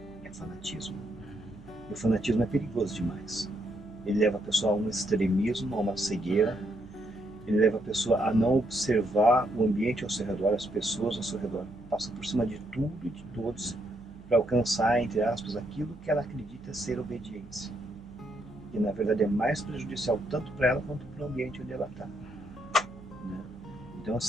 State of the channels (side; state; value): right; noise; hum, 22 dB below the sound